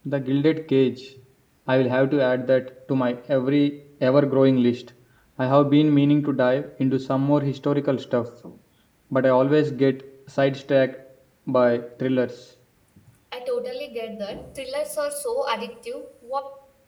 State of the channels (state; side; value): identical; both; correlation 1.00